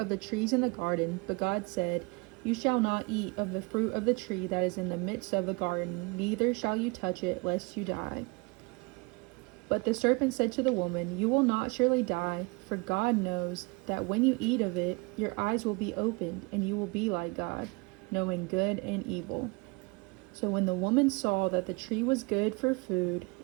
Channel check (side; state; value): left; quieter; 28.2 dB